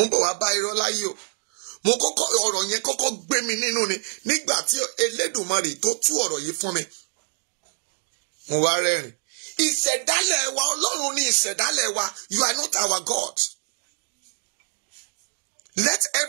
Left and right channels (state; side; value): silent; left; digital silence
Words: ń bọ̀ wá bá irọ́ láyé o. Mo kọ́kọ́ ọ̀rọ̀ yẹn kọ́kọ́ gbé mi nínú ni nígbà tí Elédùmarè tó tú ọ̀rọ̀ yìí fún mi. Mo wá rẹ́rìn. Ìṣẹ̀dálẹ̀ wa Ọlọ́run ni ìṣẹ̀dálẹ̀ wa. You are not our God. Let